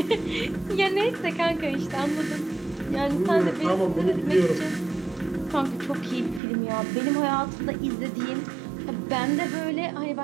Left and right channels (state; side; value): drops out; left; at 6.4 s